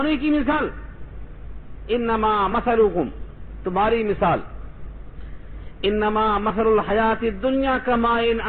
کی مثال، انما مثلکم، تمہاری مثال، انما مثل الحیات الدنیا کماء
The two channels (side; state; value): both; identical; correlation 1.00